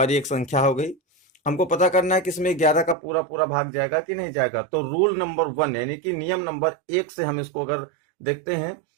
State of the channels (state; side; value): drops out; left; at 3.0 s